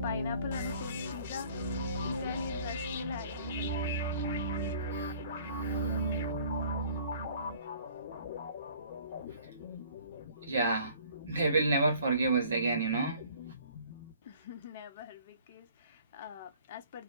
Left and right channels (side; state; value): both; inverted; correlation -0.54